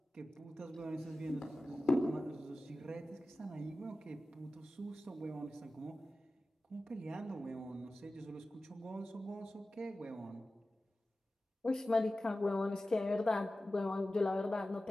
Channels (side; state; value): both; normal; correlation 0.95